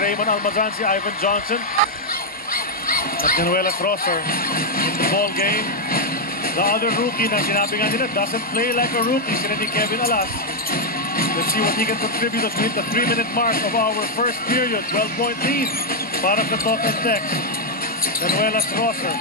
Almazan, si Ivan Johnson. At Januelas Rosser in the ball game. The other rookie na sinabi nga nila doesn't play like a rookie, si Kevin Alas. Let's see what he can contribute as we hit the 3-minute mark of our first period. 12-point lead para sa Talk and Text. Januelas Rosser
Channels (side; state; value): both; normal; correlation -0.01